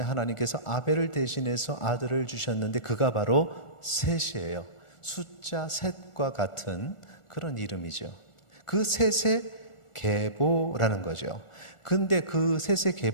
하나님께서 아벨을 대신해서 아들을 주셨는데, 그가 바로 셋이에요. 숫자 셋과 같은 그런 이름이죠. 그 셋의 계보라는 거죠. 근데 그 셋의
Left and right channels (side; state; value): right; late; 1.4 ms